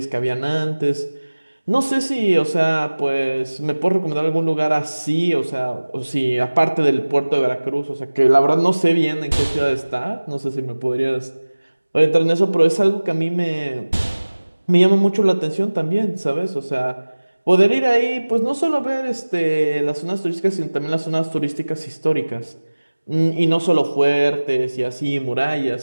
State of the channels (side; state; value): both; inverted; correlation -1.00